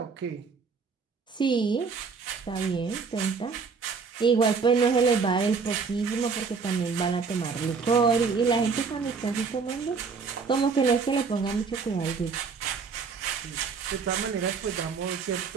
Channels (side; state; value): left; quieter; 5.2 dB